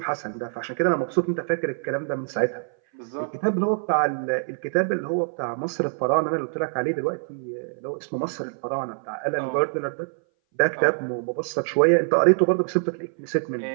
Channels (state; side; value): silent; left; 59 dB below the other